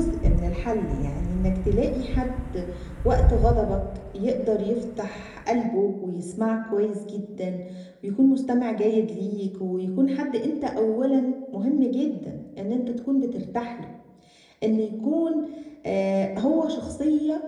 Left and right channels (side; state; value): both; identical; correlation 1.00